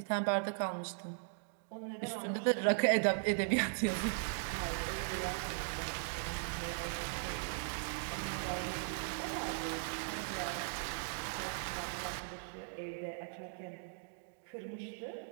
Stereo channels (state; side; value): silent; left; digital silence